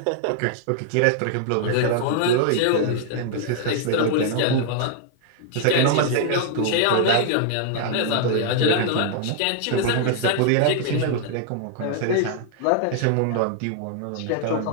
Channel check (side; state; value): both; different; correlation 0.00